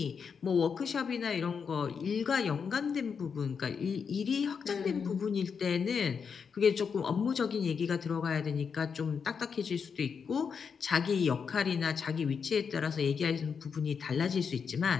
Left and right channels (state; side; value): quieter; right; 6.2 dB